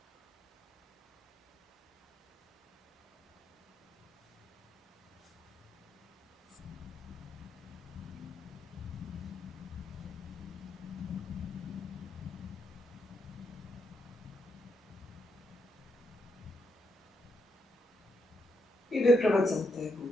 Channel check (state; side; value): normal; both; correlation 0.80